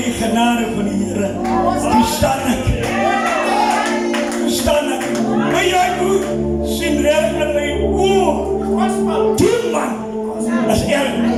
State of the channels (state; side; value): identical; both; correlation 1.00